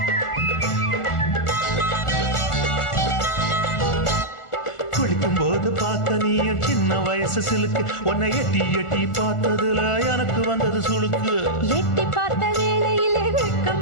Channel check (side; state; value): right; late; 1.4 ms